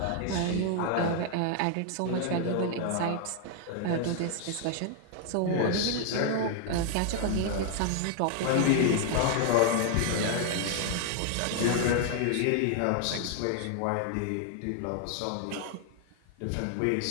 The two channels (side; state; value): both; different; correlation 0.00